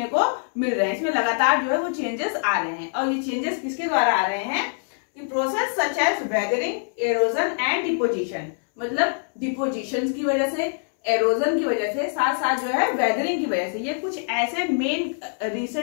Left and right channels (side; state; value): right; silent; 63 dB below the other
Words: को मिल रहे हैं, इसमें लगातार जो है वो चेंजेस आ रहे हैं। और ये चेंजेस किसके द्वारा आ रहे हैं कि process such as weathering, erosion and deposition. मतलब डिपोजिशन की वजह से, एरोजन की वजह से, साथ साथ जो है वेदरिंग की वजह से, ये कुछ ऐसे मेन